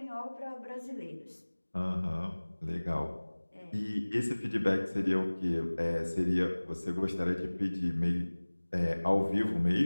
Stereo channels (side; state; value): both; inverted; correlation -1.00